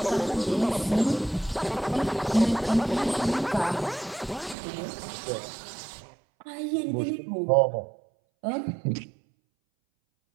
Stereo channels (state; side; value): drops out; left; at 4.5 s